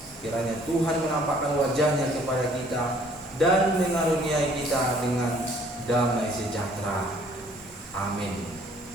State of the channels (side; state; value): both; normal; correlation 0.59